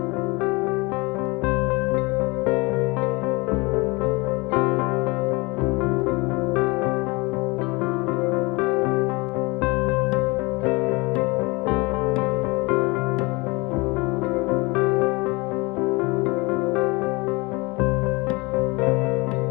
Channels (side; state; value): right; quieter; 25.8 dB